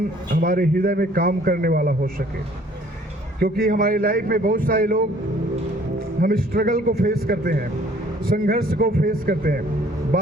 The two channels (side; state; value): both; normal; correlation 0.57